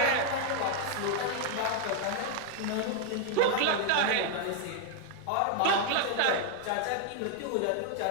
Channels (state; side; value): different; both; correlation 0.00